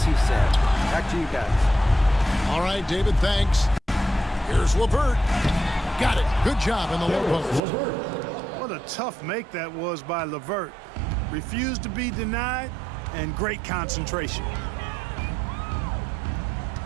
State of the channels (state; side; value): drops out; left; at 7.6 s